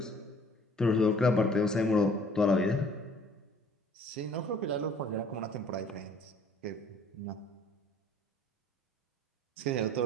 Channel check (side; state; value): both; normal; correlation 0.54